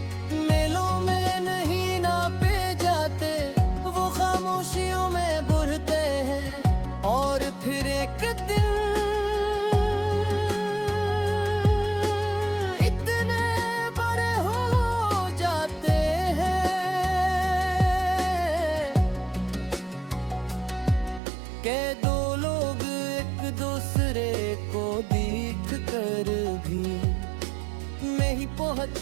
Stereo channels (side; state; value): left; drops out; at 21.2 s